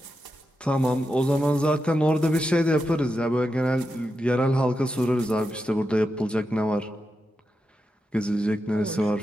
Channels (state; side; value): normal; both; correlation 0.88